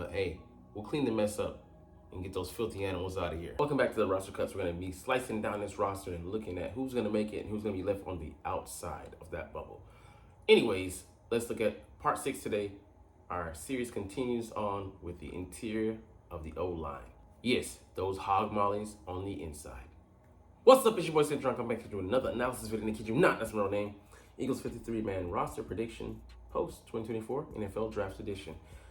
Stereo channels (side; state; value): both; identical; correlation 1.00